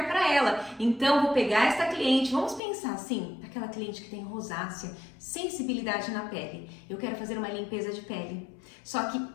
para ela. Então, vou pegar esta cliente, vamos pensar assim, aquela cliente que tem rosácea, sensibilidade na pele. Eu quero fazer uma limpeza de pele. Só que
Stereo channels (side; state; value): right; drops out; at 2.6 s